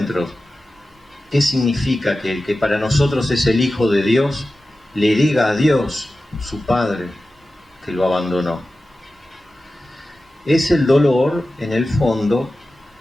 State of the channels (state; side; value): normal; both; correlation 0.94